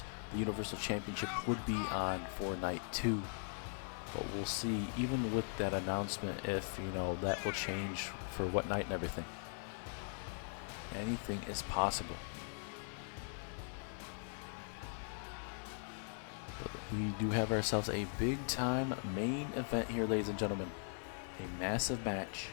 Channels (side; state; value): right; silent; 51 dB below the other